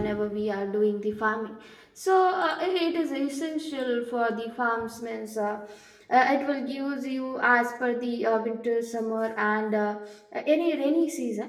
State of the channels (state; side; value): identical; both; correlation 1.00